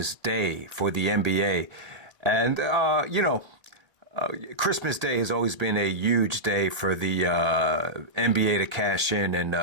Day for the NBA. And, Christmas Day has always been a huge day for the NBA to cash in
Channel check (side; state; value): left; late; 1.6 ms